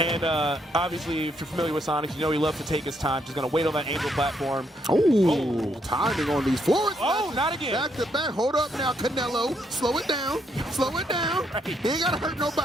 obviously, if you're familiar with Sonics, you know he loves to take his time. Just going to wait on that angel platform. Oh, timing on these floors. Oh, not again. Back to back. Hold up now, Canelo. Slow it down. Slow it down. He ain't got to hurt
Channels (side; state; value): both; normal; correlation 0.74